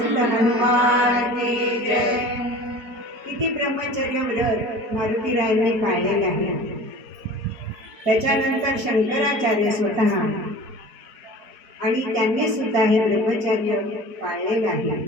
हनुमान की जय. किती ब्रह्मचर्य व्रत मारुतीरायांनी पाळलेले आहे. त्याच्यानंतर शंकराचार्य स्वतः आणि त्यांनी सुद्धा हे ब्रह्मचर्य पाळलेले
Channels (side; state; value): left; late; 4.5 ms